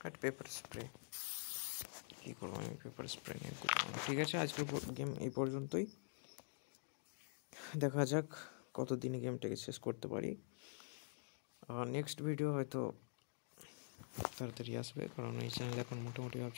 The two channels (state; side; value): silent; right; digital silence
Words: কাট পেপার স্প্রে কী করবো আমি, পেপার স্প্রে নিয়ে করবো। ঠিক আছে, আজকের গেম এই পর্যন্তই। দেখা যাক কতদিনে গেমটাকে শেষ করতে পারি। নেক্সট ভিডিও হয়তো তাড়াতাড়ি আসবে, কারণ এই চ্যানেলে এখন মোটামুটি